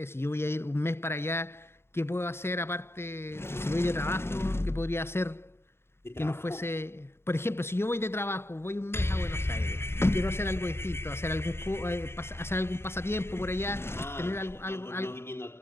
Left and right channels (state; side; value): late; right; 0.12 ms